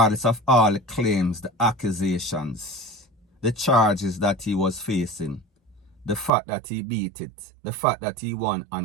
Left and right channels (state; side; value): drops out; left; at 6.3 s